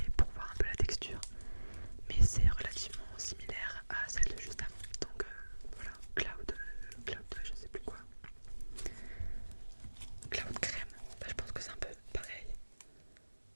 pour voir un peu la texture. Mais c'est relativement similaire à celle de juste avant. Donc voilà, cloud, je sais plus quoi. Cloud crème, bah, je pense que c'est un peu pareil.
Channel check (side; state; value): both; inverted; correlation -1.00